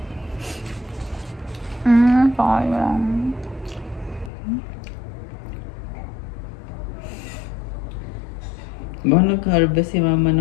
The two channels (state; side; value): drops out; right; at 4.3 s